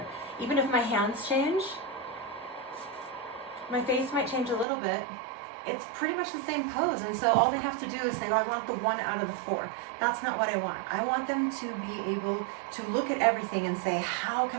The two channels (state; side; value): drops out; left; at 4.7 s